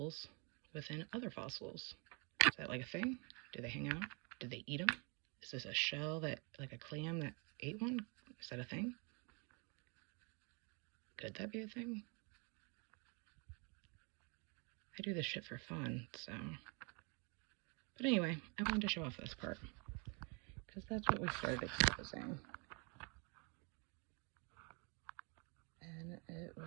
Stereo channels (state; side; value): quieter; left; 33.2 dB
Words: within other fossils? Is that like a thing? Do they hang out? Do they eat them? Is this a shell that, like a clam that ate one? Is that a thing? Could that be a thing? I do this shit for fun, so. But anyway, I wanted to show off this part, because that's what we started exposing. And it